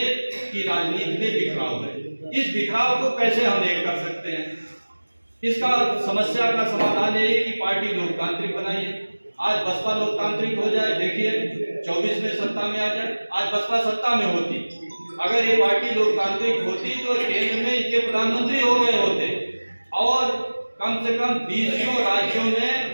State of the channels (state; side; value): inverted; both; correlation -1.00